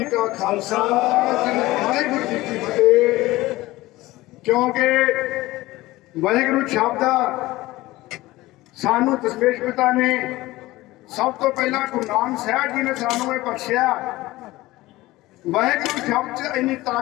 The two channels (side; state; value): right; quieter; 18.5 dB